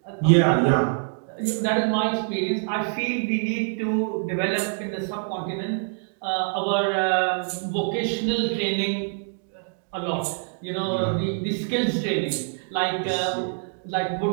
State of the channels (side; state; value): left; silent; digital silence